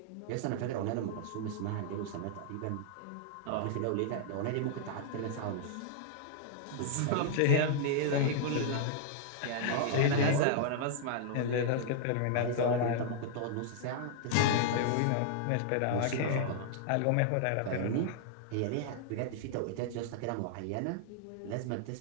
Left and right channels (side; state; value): both; different; correlation -0.01